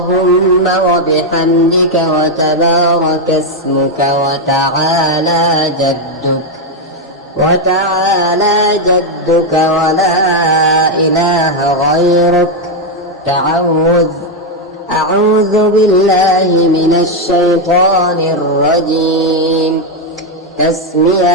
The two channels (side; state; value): both; normal; correlation 0.03